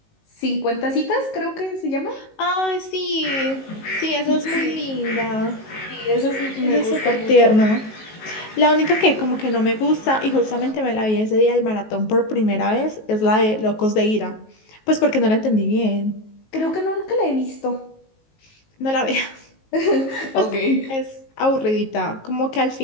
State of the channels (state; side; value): late; right; 19 ms